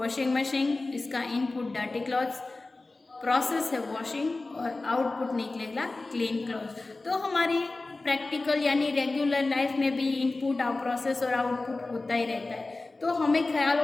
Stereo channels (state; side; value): quieter; right; 3.3 dB